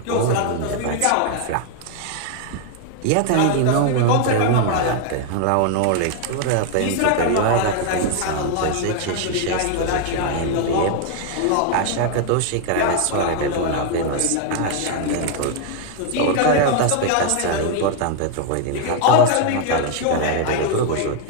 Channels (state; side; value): different; both; correlation 0.00